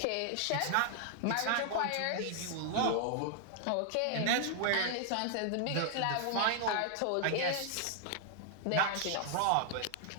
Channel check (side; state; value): both; different; correlation 0.00